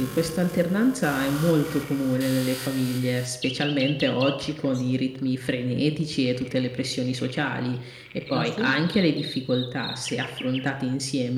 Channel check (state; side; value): identical; both; correlation 1.00